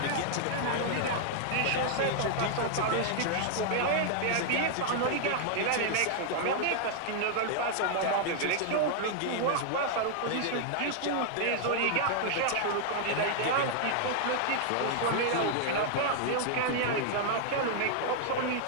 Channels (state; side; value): different; both; correlation -0.01